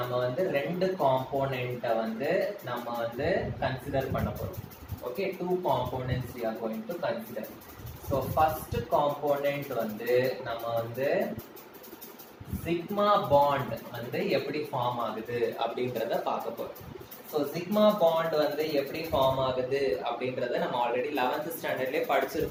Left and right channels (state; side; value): identical; both; correlation 1.00